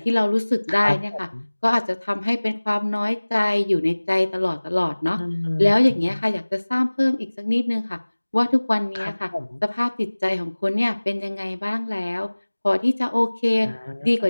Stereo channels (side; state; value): both; inverted; correlation -1.00